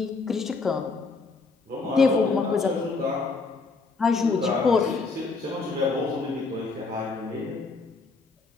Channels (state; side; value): quieter; right; 4.1 dB